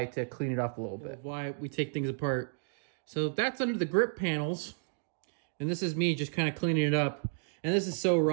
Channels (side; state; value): left; silent; digital silence